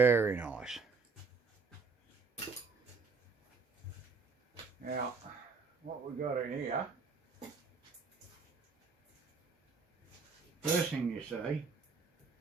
nice. Now, what we got in here, first thing you see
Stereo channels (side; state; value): left; quieter; 4.8 dB